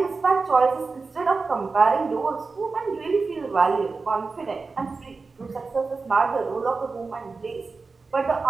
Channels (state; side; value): quieter; left; 4.2 dB